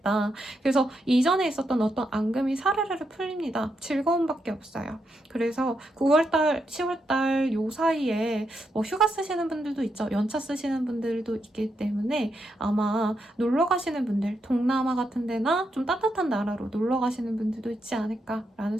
그래서 이전에 있었던 어떤 앙금이 사르르르 풀립니다. 즐거움밖에 없어요. 그래서 9월달, 10월달 요 사이에 휴가 쓰시는 분들도 있죠. 연차 쓰시는 분들도 있기 때문에 아마 놀러 가시는 분들, 동남아 같은 데나 좀 따뜻한 나라로 놀러 가시는 분들도 있지 않을까라는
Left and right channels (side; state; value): both; normal; correlation 0.82